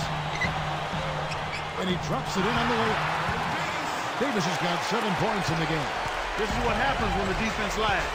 And he drops it in on the way. Davis has got 7 points in the game. This is what happens when the defense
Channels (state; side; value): identical; both; correlation 1.00